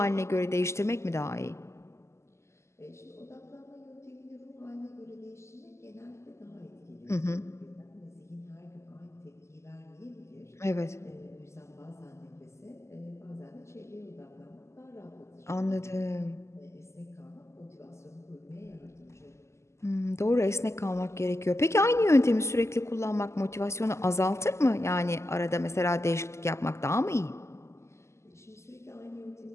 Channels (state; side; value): late; right; 0.13 ms